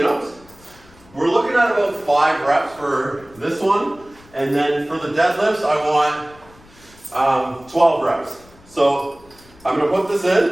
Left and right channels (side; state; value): left; noise; rumble, 26 dB below the sound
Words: We're looking at about 5 reps for this one, and then for the deadlifts, I want 12 reps. So, I'm going to put this